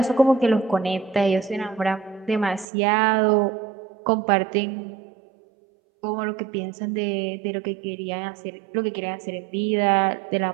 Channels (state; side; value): drops out; left; at 2.7 s